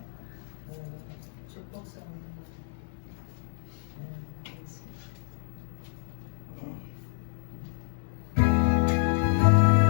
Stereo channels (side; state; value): right; silent; digital silence